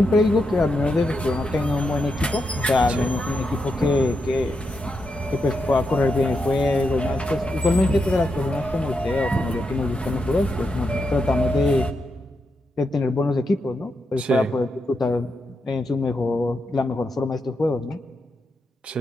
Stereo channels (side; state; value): both; normal; correlation 0.84